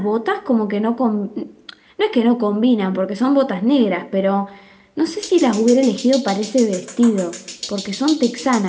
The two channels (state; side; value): identical; both; correlation 1.00